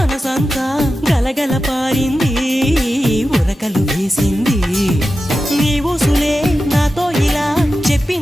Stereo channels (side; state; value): both; normal; correlation 0.92